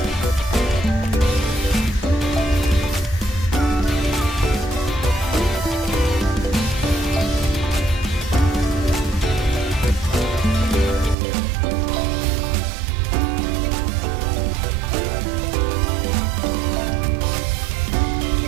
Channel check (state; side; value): drops out; left; at 11.2 s